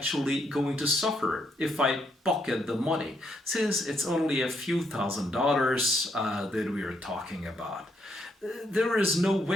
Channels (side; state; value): both; normal; correlation 0.75